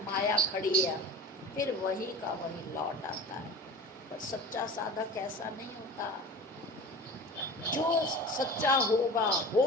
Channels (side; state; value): both; normal; correlation 0.36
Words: माया खड़ी है, फिर वही का वही लौट आता है। पर सच्चा साधक ऐसा नहीं होता। जो सच्चा होगा